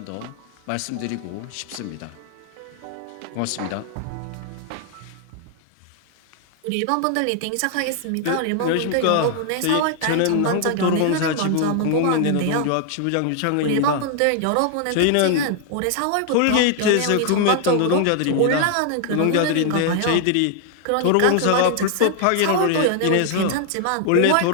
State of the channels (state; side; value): different; both; correlation 0.00